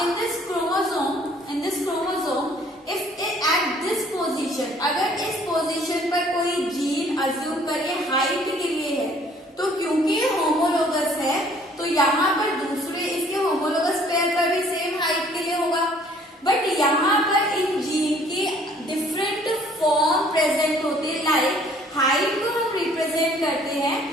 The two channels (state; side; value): normal; both; correlation 0.58